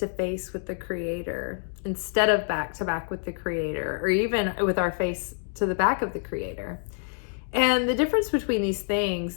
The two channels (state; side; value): silent; right; 59 dB below the other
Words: face with the Creator instead of back to back with the Creator, or even with our face to the back of the Creator. And the difference between these things